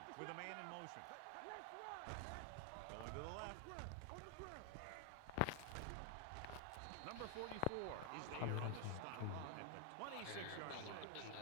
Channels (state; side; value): different; both; correlation 0.00